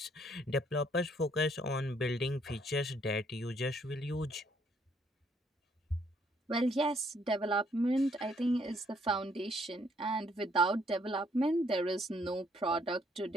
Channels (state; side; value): normal; both; correlation 0.68